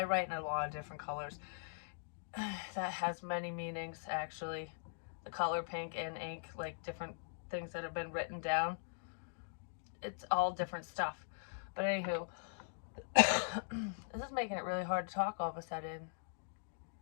write in a lot of different colors. That has many meanings, actually. The color pink and ink, like different things that have been written down. It's all different stuff. But anywho, this is making it really hard to talk all of a sudden.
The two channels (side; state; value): right; silent; digital silence